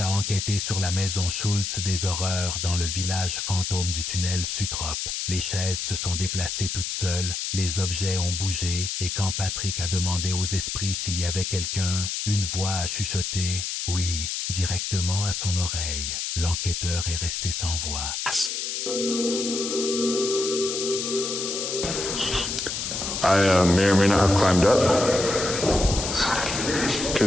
a enquêté sur la maison Schultz des horreurs dans le village fantôme du tunnel Sutrop. Les chaises se sont déplacées toutes seules, les objets ont bougé, et quand Patrick a demandé aux esprits s'il y avait quelqu'un, une voix a chuchoté « oui » directement à son oreille. L'enquêteur est resté sans voix. I may or may not have climbed up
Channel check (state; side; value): noise; left; hiss, 3 dB below the sound